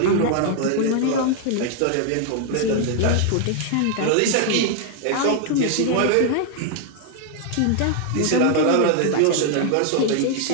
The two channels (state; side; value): different; both; correlation 0.00